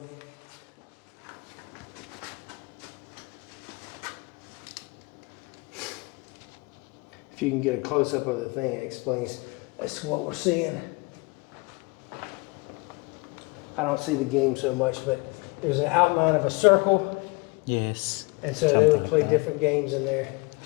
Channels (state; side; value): quieter; right; 27.4 dB